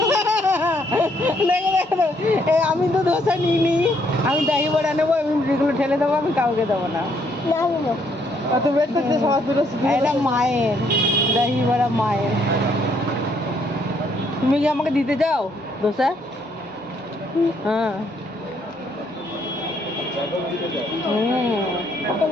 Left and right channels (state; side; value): normal; both; correlation 0.70